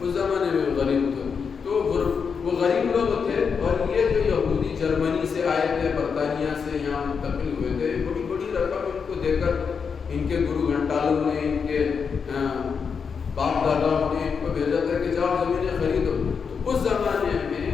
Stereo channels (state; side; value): quieter; right; 6.0 dB